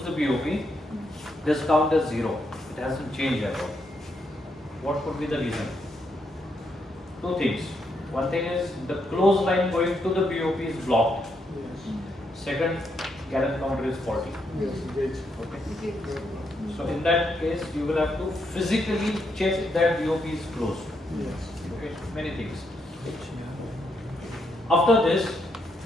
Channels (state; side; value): normal; both; correlation 0.78